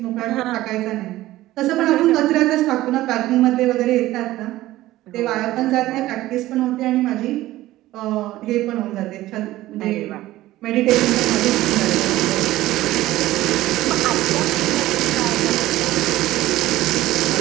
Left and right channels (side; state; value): left; quieter; 16.1 dB